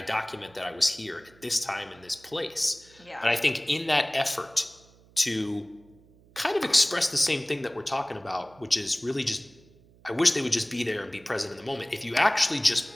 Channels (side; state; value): right; noise; hum, 28 dB below the sound